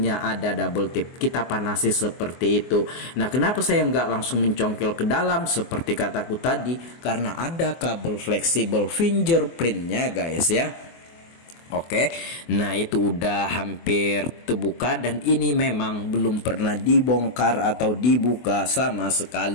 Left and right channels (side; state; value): right; late; 24 ms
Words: ada double tip, kita panasi seperti itu. Nah kenapa saya nggak langsung mencongkel ke dalam seperti kataku tadi? Karena ada kabel fleksibel fingerprintnya guys ya. Oke, nah itu udah hampir terbuka dan ini memang belum pernah dibongkar atau dibuka sama